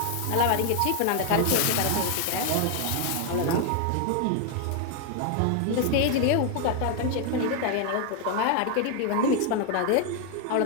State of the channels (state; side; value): different; both; correlation 0.00